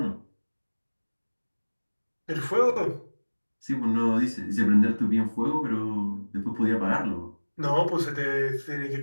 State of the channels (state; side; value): inverted; both; correlation -1.00